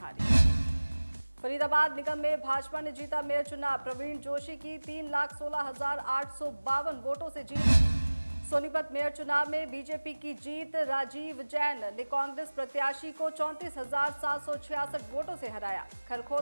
फरीदाबाद निगम में भाजपा ने जीता मेयर चुनाव। प्रवीण जोशी की 3,16,852 वोटों से जीत। सोनीपत मेयर चुनाव में बीजेपी की जीत। राजीव जैन ने कांग्रेस प्रत्याशी को 34,766 वोटों से हराया।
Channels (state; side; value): inverted; both; correlation -1.00